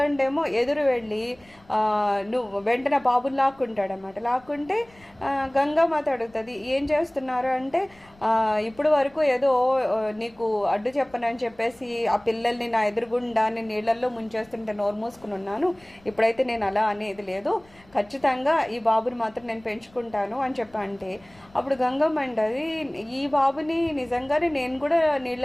ఎదురు వెళ్ళి నువ్వు వెంటనే బాబుని లాక్కుంటాడనమాట. లాక్కుంటే గంగామాత అడుగుతుంది, ఏం చేస్తున్నారు అంటే, ఇప్పుడు వరకు ఏదో నీకు అడ్డు చెప్పనని చెప్పేసి ఆ పిల్లల్ని నా ఎదురుగుండా నేను నీళ్ళల్లో ముంచేస్తుంటే నోరు మూసుకుని ఉన్నాను, ఇప్పుడైతే నేను అలా అనేది లేదు, ఖచ్చితంగా ఈ బాబుని మాత్రం నేను పెంచుకుంటాను అని చెప్పంటే, అప్పుడు గంగమ్మ అంటది, ఈ బాబుని నిజంగానే నేను కూడా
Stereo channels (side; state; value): left; noise; rumble, 28 dB below the sound